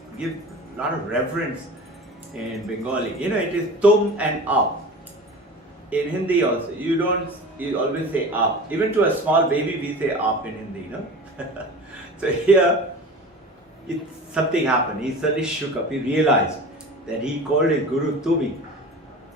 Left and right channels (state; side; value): normal; both; correlation 0.36